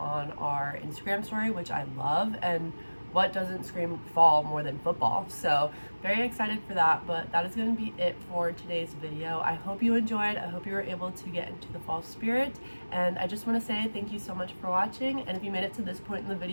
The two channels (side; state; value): both; inverted; correlation -1.00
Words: our Instagram story, which I love, and what doesn't scream fall more than football? So very excited for that, but that is going to be it for today's video. I hope you enjoyed. I hope you were able to get into the fall spirit, and I just want to say thank you so much for watching. And if you made it to this point in the